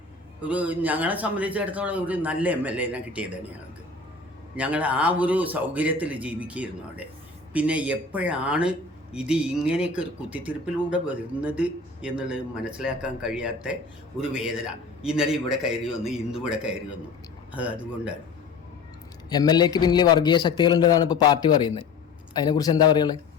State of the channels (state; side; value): quieter; right; 4.3 dB